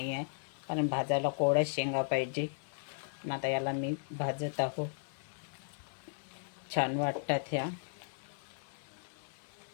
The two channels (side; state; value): right; silent; 54 dB below the other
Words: आहे कारण भाजायला कोवळ्या शेंगा पाहिजे. पण आता याला मी भाजत आहो. छान वाटतात ह्या.